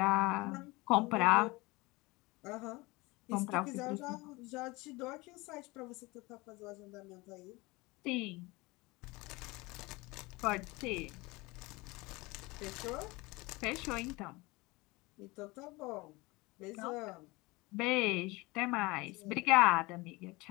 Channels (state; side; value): quieter; right; 23.3 dB